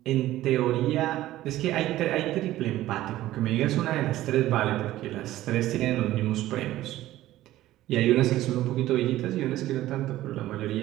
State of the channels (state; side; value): quieter; left; 15.1 dB